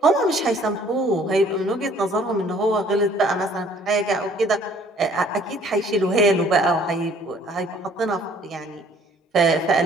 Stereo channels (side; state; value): both; normal; correlation 0.57